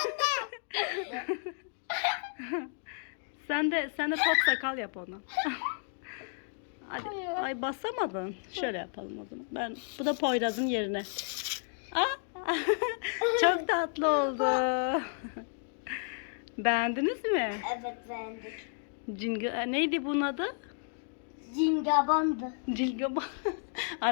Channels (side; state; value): right; silent; 56 dB below the other